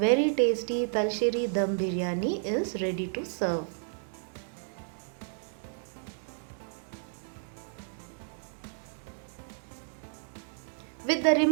tasty Talsheri dum biryani is ready to serve. With the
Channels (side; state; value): left; silent; digital silence